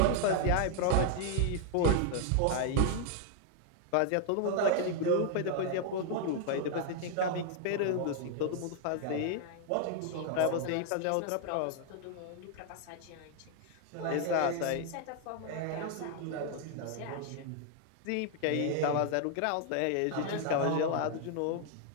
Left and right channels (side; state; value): both; different; correlation 0.00